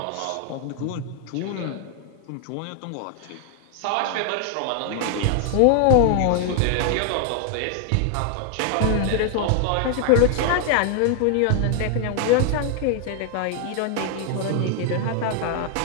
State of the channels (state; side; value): different; both; correlation 0.00